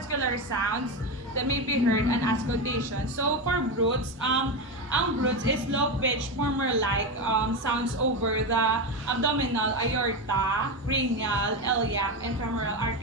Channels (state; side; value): normal; both; correlation 0.15